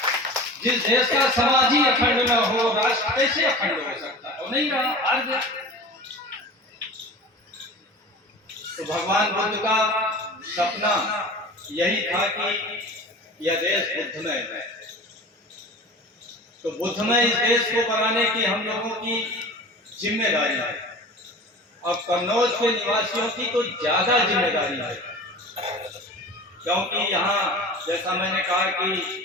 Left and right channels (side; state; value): both; normal; correlation 0.37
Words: जिस देश का समाज ही अखंड न हो, राष्ट्र कैसे अखंड हो सकता है? वो नहीं रहा, हार गया। तो भगवान बुद्ध का सपना यही था कि यह देश बुद्धमय है। तो बुद्धमय इस देश को बनाने की हम लोगों की जिम्मेदारी है। अब कन्नौज के निवासियों की तो ज्यादा जिम्मेदारी है, क्योंकि यहाँ जैसा मैंने कहा